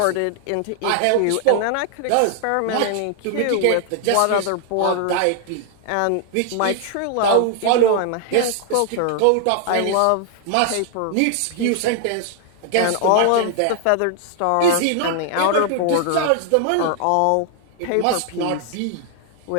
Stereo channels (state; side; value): different; both; correlation 0.00